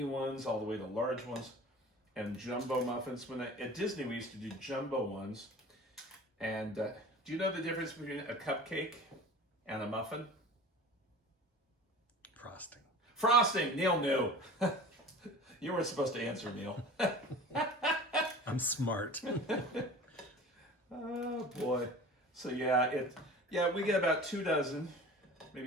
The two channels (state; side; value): normal; both; correlation 0.40